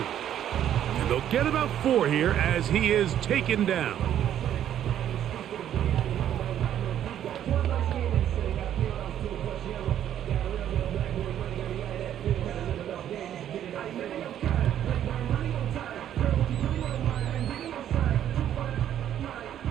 And they'll get about 4 here as he is taken down.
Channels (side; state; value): left; quieter; 10.7 dB